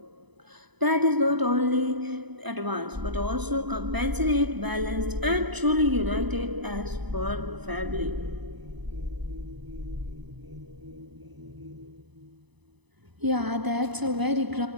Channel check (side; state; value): left; late; 1.0 ms